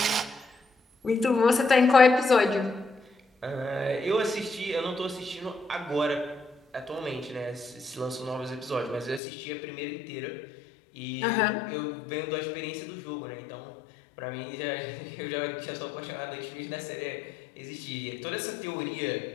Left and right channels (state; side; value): drops out; right; at 9.2 s